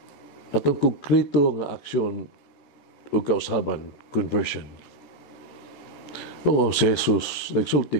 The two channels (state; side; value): late; right; 14 ms